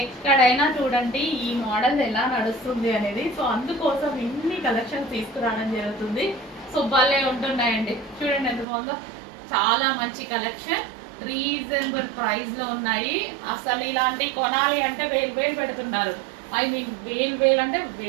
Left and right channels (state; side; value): drops out; left; at 8.7 s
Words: ఎక్కడైనా చూడండి ఈ మోడల్ ఎలా నడుస్తుంది అనేది. సో అందుకోసం ఇన్ని కలెక్షన్ తీసుకురావడం జరుగుతుంది. సో భలే ఉంటున్నాయండి, చూడండి ఎంత బాగుందో. చాలా మంచి కలెక్షన్, రీజనబుల్ ప్రైస్లో ఉన్నాయి. అసలు ఇలాంటివి కొనాలి అంటే వేలు పెడుతున్నారు. ఐ మీన్ వేలు అంటే